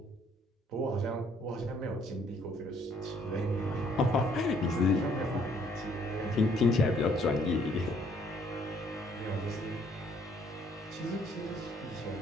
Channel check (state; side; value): normal; both; correlation 0.63